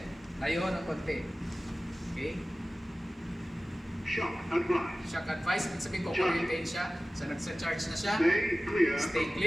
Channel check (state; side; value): normal; both; correlation 0.96